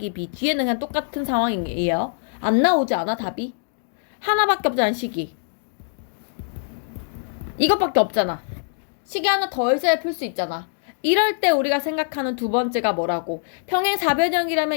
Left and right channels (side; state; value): right; silent; digital silence